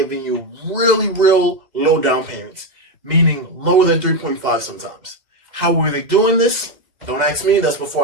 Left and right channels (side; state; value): left; late; 2.1 ms